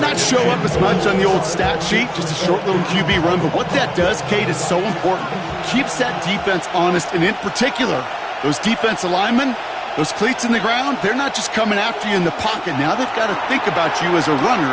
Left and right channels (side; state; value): both; identical; correlation 1.00